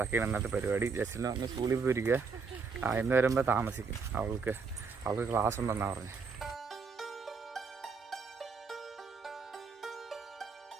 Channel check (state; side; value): quieter; left; 5.0 dB